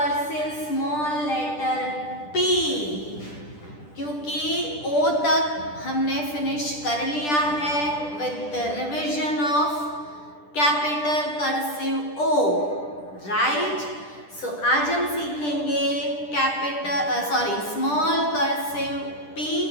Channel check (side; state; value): right; late; 10 ms